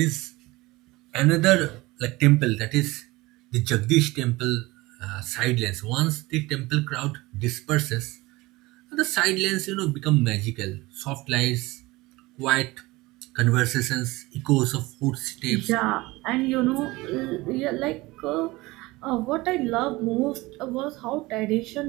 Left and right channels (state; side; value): quieter; left; 21.0 dB